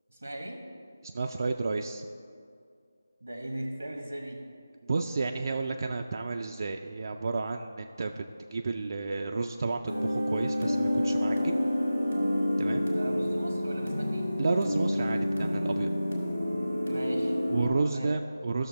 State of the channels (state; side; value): inverted; both; correlation -0.94